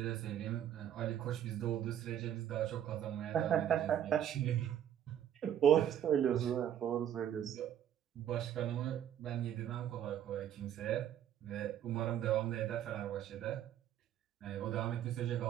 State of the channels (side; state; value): left; quieter; 10.2 dB